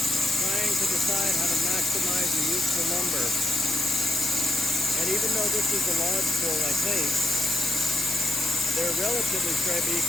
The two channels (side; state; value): left; noise; hiss, 2 dB below the sound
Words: trying to decide how to maximize the useful lumber. And even though this is a lodgepole, I think, they're relatively straight, but you